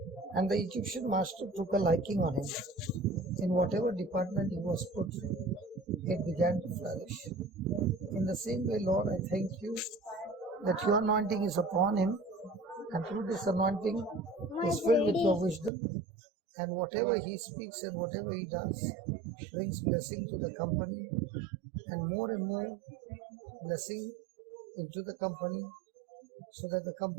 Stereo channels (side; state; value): left; drops out; at 15.7 s